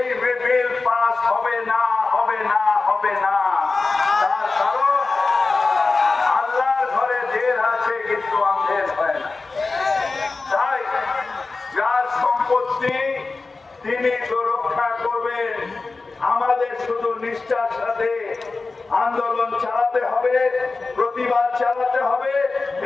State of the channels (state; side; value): quieter; right; 3.8 dB